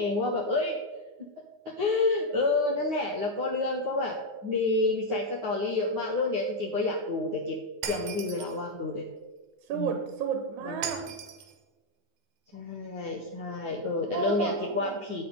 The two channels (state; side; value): late; left; 9.6 ms